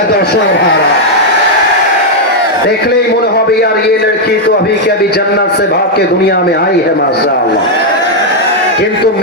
দর্শক ভাড়া দেখলেই মনে হবে यार ये लड़की तो अभी के अभी जन्नत से भाग के दुनिया में आई है माशाअल्लाह। কিন্তু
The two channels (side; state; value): both; normal; correlation -0.01